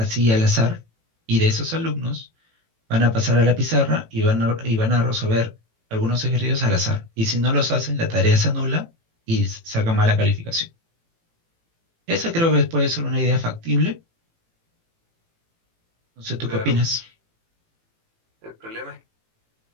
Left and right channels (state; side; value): late; left; 18 ms